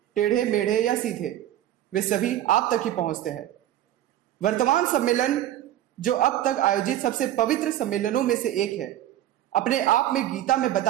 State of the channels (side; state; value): left; quieter; 12.9 dB